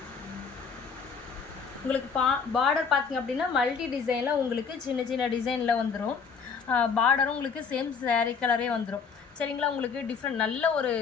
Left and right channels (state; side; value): quieter; right; 5.8 dB